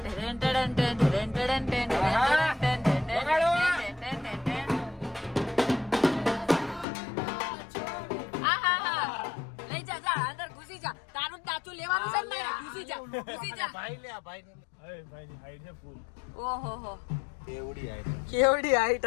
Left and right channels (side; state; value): right; drops out; at 6.9 s